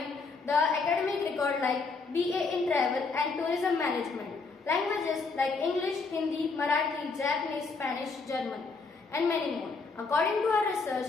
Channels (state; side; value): quieter; right; 4.3 dB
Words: the academic record like BA in travel and tourism management. Languages like English, Hindi, Marathi, Japanese, Spanish, German, and many more. According to our